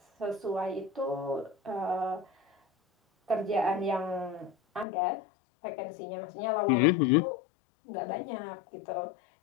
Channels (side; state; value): right; drops out; at 4.9 s